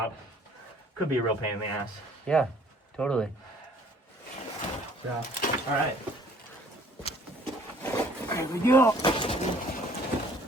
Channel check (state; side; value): normal; both; correlation 0.56